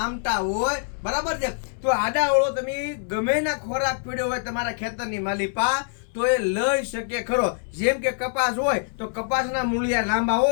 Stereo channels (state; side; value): silent; right; 62 dB below the other